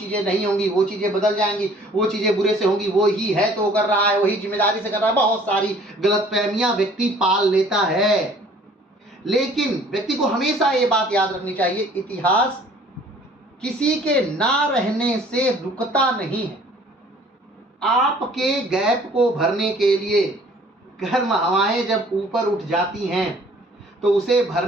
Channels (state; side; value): normal; both; correlation 0.54